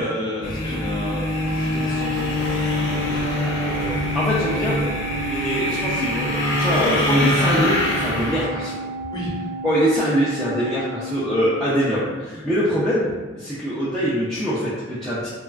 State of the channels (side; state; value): both; normal; correlation 0.44